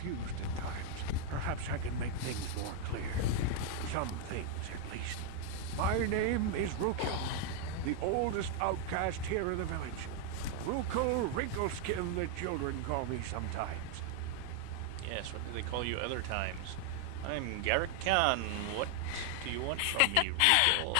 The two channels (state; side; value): different; both; correlation 0.00